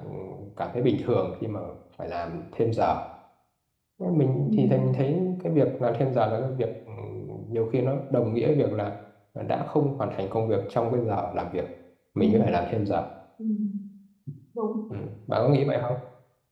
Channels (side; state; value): both; identical; correlation 1.00